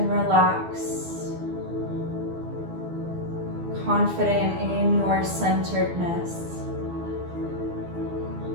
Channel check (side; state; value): left; late; 12 ms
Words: relax. Confident in your centeredness.